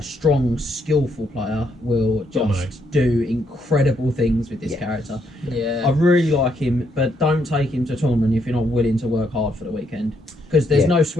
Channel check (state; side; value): normal; both; correlation 0.74